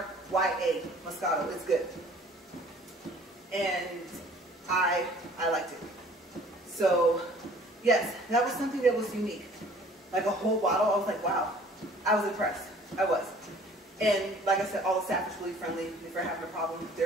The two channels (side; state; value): both; normal; correlation 0.52